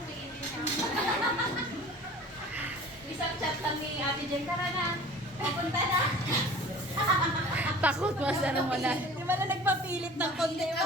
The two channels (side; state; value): both; normal; correlation 0.43